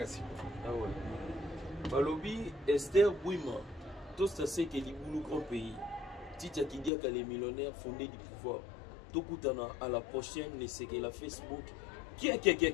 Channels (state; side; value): drops out; right; at 6.9 s